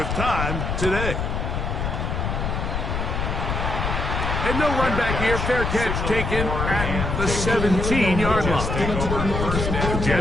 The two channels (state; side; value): noise; left; rumble, 2 dB below the sound